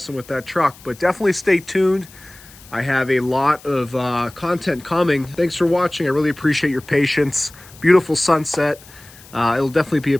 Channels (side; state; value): left; noise; hiss, 22 dB below the sound